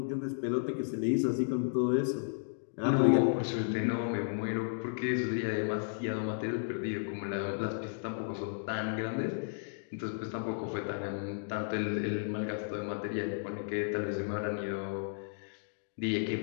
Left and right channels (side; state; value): right; silent; digital silence